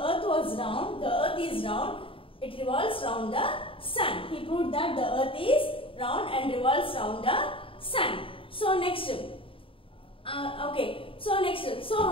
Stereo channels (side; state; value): right; late; 0.26 ms